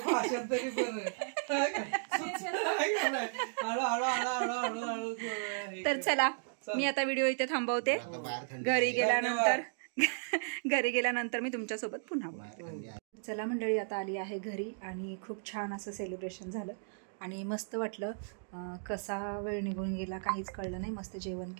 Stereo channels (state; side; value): silent; left; digital silence